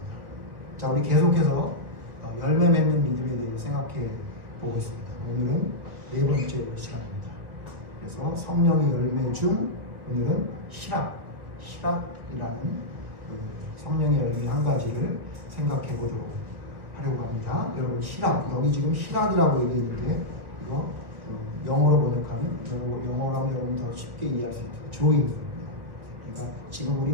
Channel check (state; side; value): late; left; 1.5 ms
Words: 자, 우리 계속해서 열매 맺는 믿음에 대해 생각해 보고 있습니다. 오늘은 네 번째 시간입니다. 그래서 성령의 열매 중 오늘은 희락이라는 그 성령의 열매 한 가지를 생각해 보도록 하려고 합니다. 여러분 희락, 여기 지금 희락이라고 얘기했는데 이거 영어로 번역하면 영어로 하면 여러분 더 쉽게 이해할 수 있죠. joy. 그러니까 지금